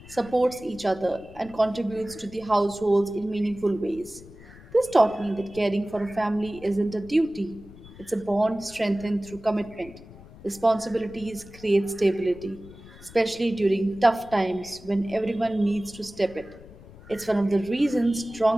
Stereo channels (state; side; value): noise; left; rumble, 20 dB below the sound